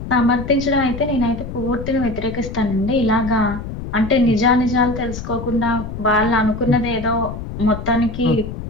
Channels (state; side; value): noise; left; rumble, 8 dB below the sound